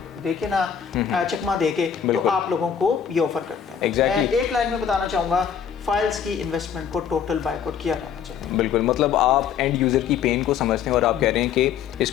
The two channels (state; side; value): quieter; right; 8.0 dB